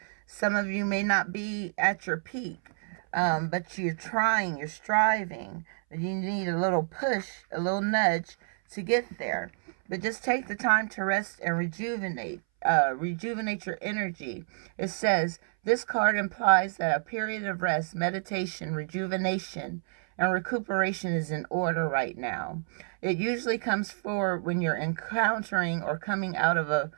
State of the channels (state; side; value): silent; left; 59 dB below the other